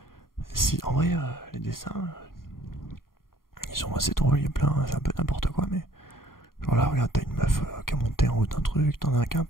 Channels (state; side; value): late; right; 0.91 ms